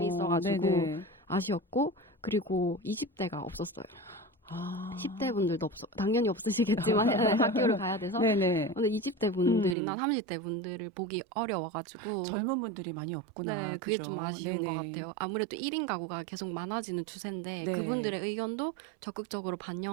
있어가지고 네네. 아쉬웠고 그리고 20대가 없었어요. 아. 10대 분들도 당연히 없으시겠지만 학교를 가야 돼서 네네. 근데 20대 분들이나 30대 분들을 보기 어려워가지고 젊은 분들이 많이 없구나. 네, 그게 그죠? 좀 아쉬운 네네. 것 같아요. 아무래도 1인 가구가 계속 많아지는 추세인데 네. 그분들의 의견도 적극적으로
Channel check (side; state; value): left; drops out; at 9.8 s